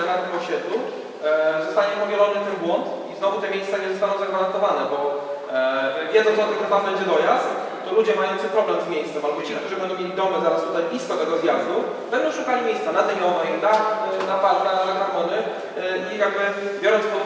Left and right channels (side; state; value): both; identical; correlation 1.00